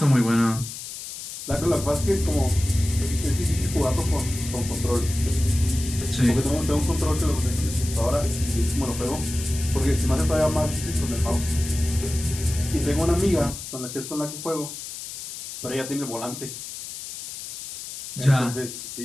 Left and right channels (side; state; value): left; noise; hiss, 10 dB below the sound